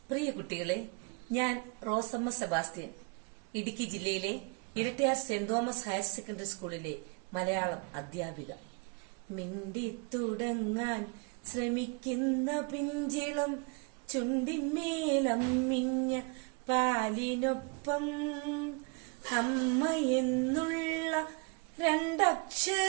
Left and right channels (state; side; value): quieter; left; 33.1 dB